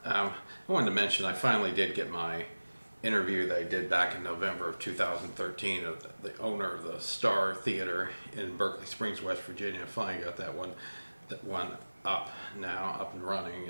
I wanted to mention I finally did get my interview that I did back in November of 2013 of the owner of the Star Theater in Berkeley Springs, West Virginia. I finally got that one up now, up and running,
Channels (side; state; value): both; inverted; correlation -1.00